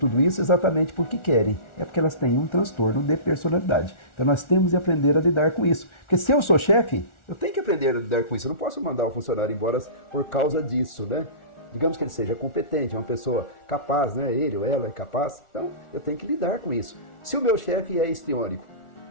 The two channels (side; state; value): right; late; 1.4 ms